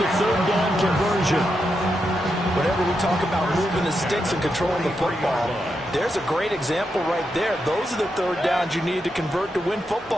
3rd down conversion. Whenever we talk about moving the sticks and controlling the football, there's a great example right there. Those are the 3rd downs you need to convert to win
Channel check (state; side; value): normal; both; correlation 0.85